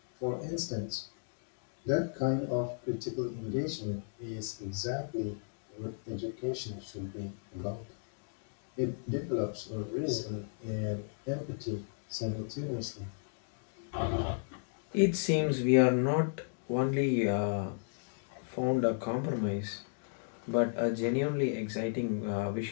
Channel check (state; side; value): silent; right; digital silence